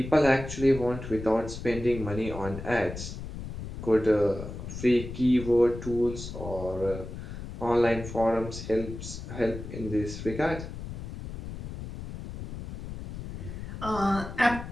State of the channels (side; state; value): left; noise; rumble, 9 dB below the sound